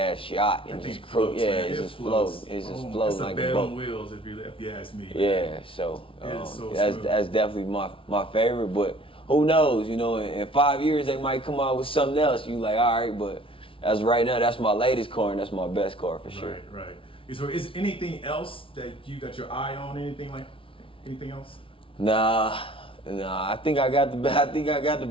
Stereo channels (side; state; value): right; late; 0.25 ms